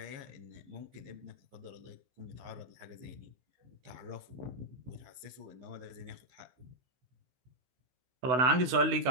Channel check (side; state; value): left; late; 15 ms